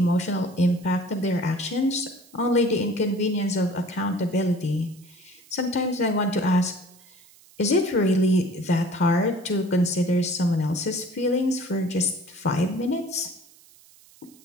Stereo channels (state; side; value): noise; right; hiss, 26 dB below the sound